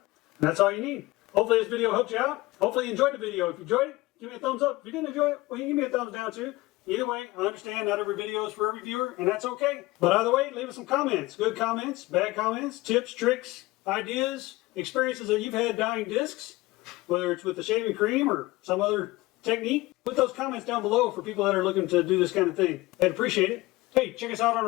And that's all you need. Hopefully this video helped you out. Hopefully you enjoyed the video. If you enjoyed it, give me a thumbs up. If you didn't enjoy it, well, you can give me a thumbs down too. Either way, I understand not every video is for every viewer, and that's okay. But either way, leave us some comments. Good comments, bad comments, tips, tricks, ideas, experiences that you've had dyeing discs, whether it's with the shaving cream or some other technique. Put those comments down below for people that are looking to do this kind of thing. I'd appreciate it. Hey, check us out on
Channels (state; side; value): quieter; right; 20.1 dB